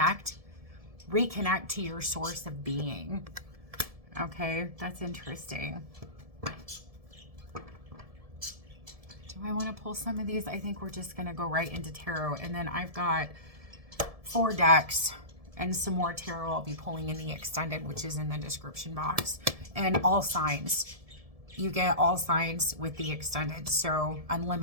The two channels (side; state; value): left; late; 1.7 ms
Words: to your source of being. Okay, that's interesting. Do I want to pull some of these? I think we're just going to go right into tarot. And then I've got 4 decks and some more tarot I'll be pulling in the extended, which is in the description box. And all signs. You get all signs with the extended. So